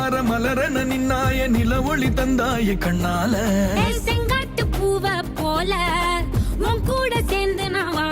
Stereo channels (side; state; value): both; identical; correlation 1.00